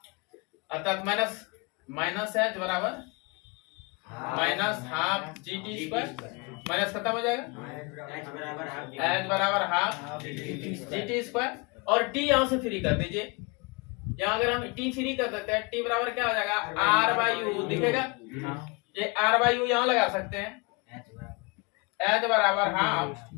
अर्थात माइनस एच बराबर minus half G T square, minus खत्म हो जाएगा, एच बराबर हाफ जी टी स्क्वायर। और टी यहाँ से फ्री कर दीजिए, यहाँ अगर हम टी फ्री कर देते हैं टी बराबर क्या हो जाएगा? आर बाई यू दिखेगा, ये आर बाई यू यहाँ लगा सकते हैं, एच बराबर half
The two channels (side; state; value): right; quieter; 29.4 dB